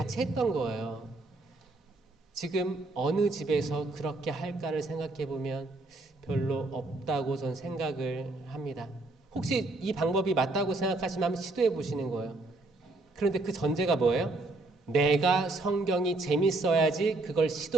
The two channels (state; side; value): quieter; left; 3.0 dB